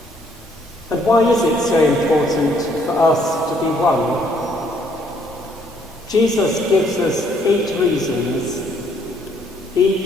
And why is it so important for us to be one? Jesus gives us 8 reasons,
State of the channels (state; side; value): normal; both; correlation 0.66